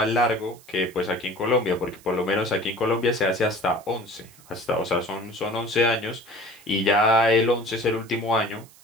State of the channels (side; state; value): right; noise; hiss, 25 dB below the sound